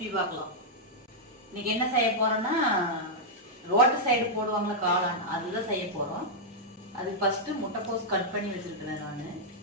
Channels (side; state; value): both; normal; correlation -0.06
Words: பார்க்கலாம். இன்னைக்கு என்ன செய்ய போறோம்னா, ரோட்டு சைடு போடுவாங்களா காளான், அதுதான் செய்ய போறோம். அதுக்கு ஃபர்ஸ்ட் முட்டைக்கோஸ் கட் பண்ணி வச்சிருக்கிறேன் நான்.